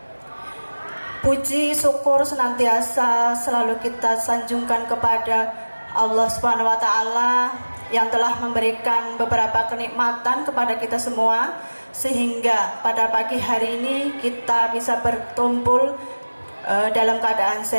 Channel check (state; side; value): inverted; both; correlation -1.00